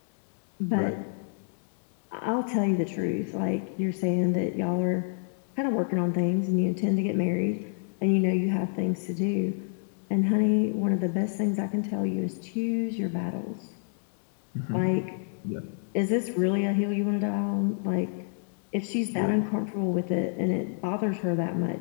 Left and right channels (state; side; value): silent; right; digital silence